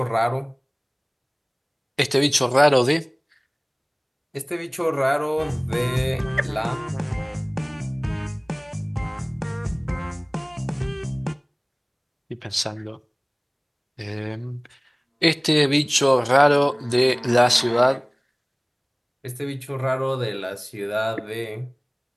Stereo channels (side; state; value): both; identical; correlation 1.00